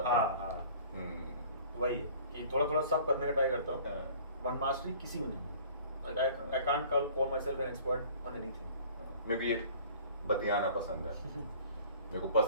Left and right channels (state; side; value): inverted; both; correlation -0.49